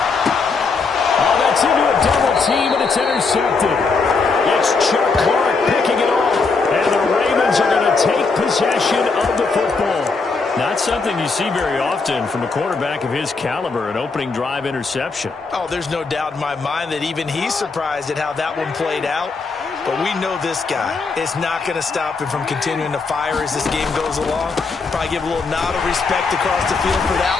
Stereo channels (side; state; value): right; quieter; 4.4 dB